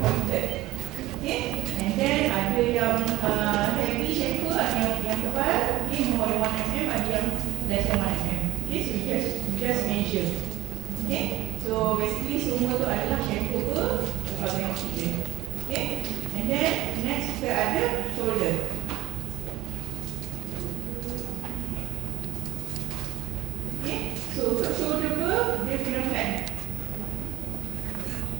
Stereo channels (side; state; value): left; quieter; 17.4 dB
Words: Okay. And then ada yang heavy chamfer, ada yang tebal, okay, more than 1 mm, ada yang less than 1 mm. Okay. So just measure. Okay. So basically semua tu adalah chamfer ber, kalau tengok tip dia. Okay. And then next kita ada shoulder. Okay. So untuk shoulder ber, dia kena flat.